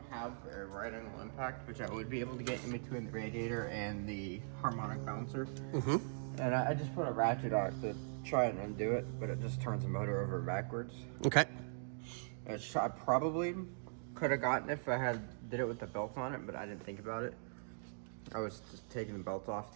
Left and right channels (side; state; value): left; silent; digital silence